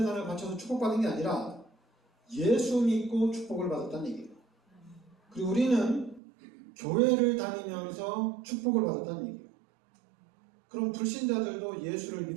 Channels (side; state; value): left; drops out; at 6.2 s